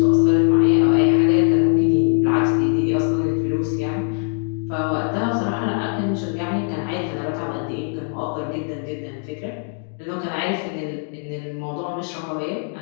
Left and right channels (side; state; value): right; silent; 55 dB below the other